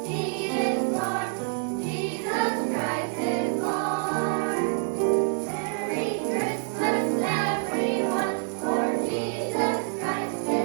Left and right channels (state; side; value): silent; left; 58 dB below the other